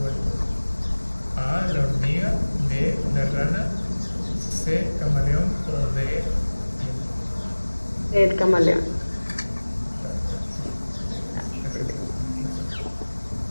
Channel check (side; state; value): both; inverted; correlation -1.00